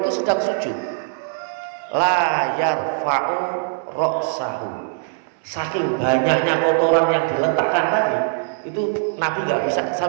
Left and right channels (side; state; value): left; silent; digital silence